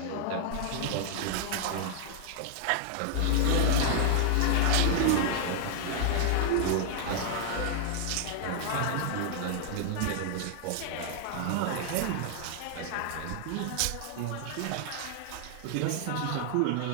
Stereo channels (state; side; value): different; both; correlation 0.00